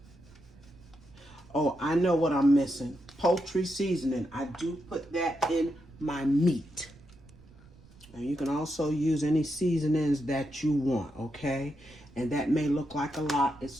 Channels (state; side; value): noise; right; rumble, 24 dB below the sound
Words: Oh, I know what I'm missing. Poultry seasoning. I do put that in my meat. And you can also use any seasonings that you want, okay? And that may look like a lot. It's